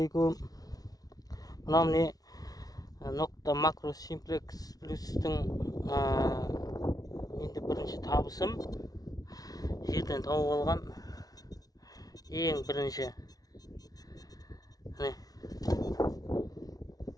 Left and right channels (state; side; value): late; right; 0.18 ms